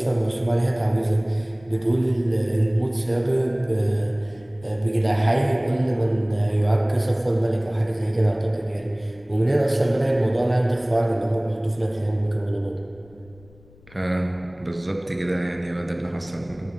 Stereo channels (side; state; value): left; noise; rumble, 26 dB below the sound